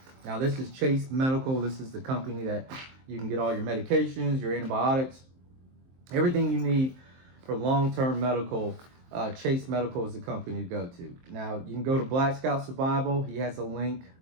Now, this is Chase Medical. This is the company that you can get all your medications, your antibiotics, everything you need for long-term medical, Chase Medical is the company to go to. Now, you can go to Black Scout Survival. He has a link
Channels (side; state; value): left; late; 23 ms